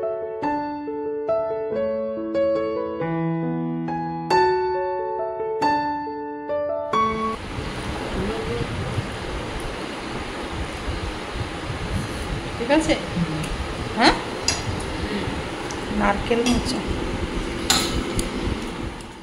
ঠিক আছে। হ্যাঁ, নারকেল মোচা।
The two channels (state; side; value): identical; both; correlation 1.00